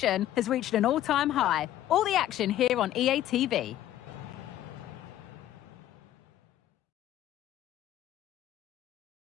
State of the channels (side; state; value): right; quieter; 12.8 dB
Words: has reached an all-time high. All the action here on EA TV.